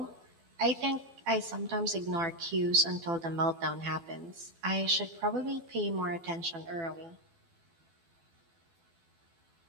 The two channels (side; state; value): left; late; 12 ms